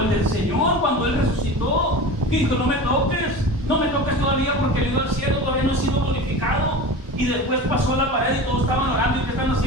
el del Señor cuando Él resucitó. Que dijo, no me toques todavía porque el Hijo del cielo todavía no ha sido glorificado. Y después pasó la pared y todos estaban orando. ¿Y qué están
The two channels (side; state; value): both; normal; correlation 0.32